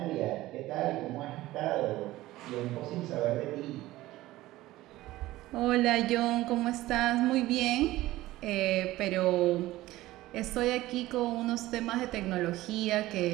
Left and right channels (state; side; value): quieter; left; 16.9 dB